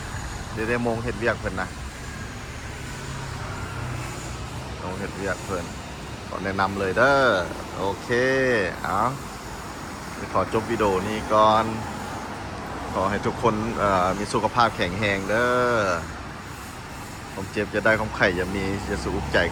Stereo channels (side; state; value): both; identical; correlation 1.00